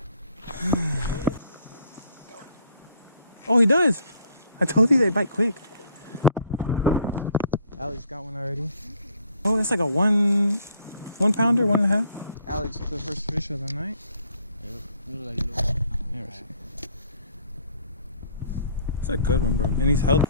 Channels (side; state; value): both; inverted; correlation -0.61